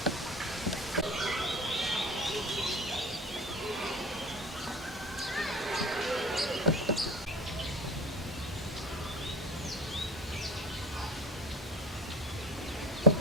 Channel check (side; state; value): both; normal; correlation 0.35